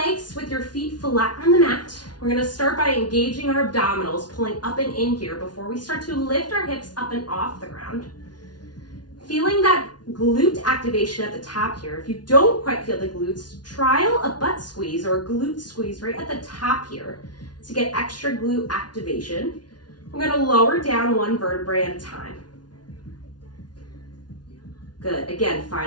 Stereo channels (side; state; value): right; late; 0.69 ms